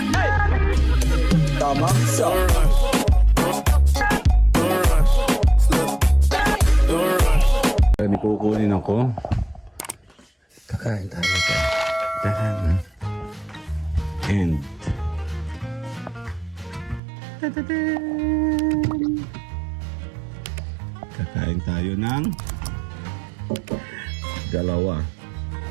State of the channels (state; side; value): drops out; left; at 17.0 s